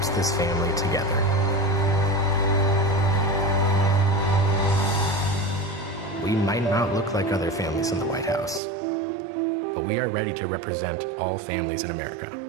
this family together. We might not look like other families in the White House, but we are ready to represent all families in America.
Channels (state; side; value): drops out; left; at 8.6 s